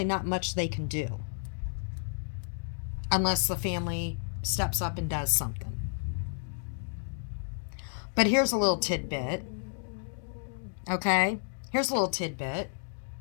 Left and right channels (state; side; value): silent; right; digital silence